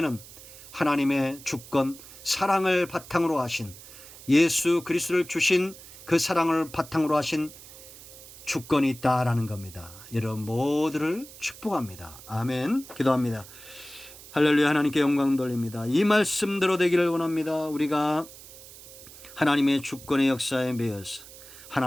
하나님의 주권, 사랑을 바탕으로 하신, 예수 그리스도를 주신 그 사랑을 바탕으로 하신 주권이 있다라는 겁니다. 여러분 모두를 축복합니다. 아멘. 기도합니다. 할렐루야. 하나님께 영광 돌립니다. 이 말씀대로 되기를 원합니다. 우리가 하나님의 주권의 역사에 매여서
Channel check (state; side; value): noise; right; hiss, 18 dB below the sound